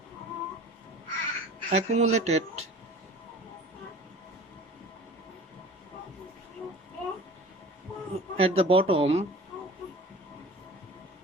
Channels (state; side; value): normal; both; correlation 0.42